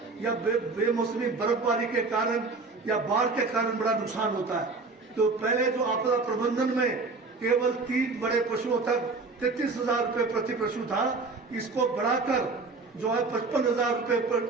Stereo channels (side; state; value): left; quieter; 3.9 dB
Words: या बेमौसमी बर्फबारी के कारण या बाढ़ के कारण बड़ा नुकसान होता है। तो पहले जो आपदा प्रबंधन में केवल 3 बड़े पशुओं तक 33,000 रुपए प्रति पशु था, इसको बढ़ाकर जो है 55,000 रुपए